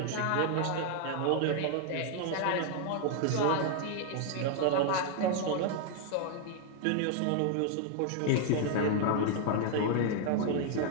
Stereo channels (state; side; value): different; both; correlation 0.00